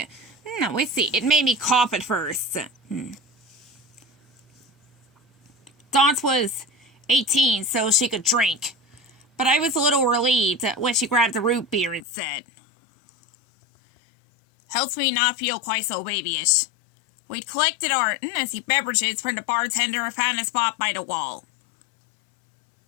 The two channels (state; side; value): drops out; right; at 12.1 s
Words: made me cough at first. Dot was 18, so she could drink, but I was a little relieved when she grabbed the root beer and said, "Helps me not feel quite so babyish." We'd collected our beverages from the bartender and found a spot by the wall.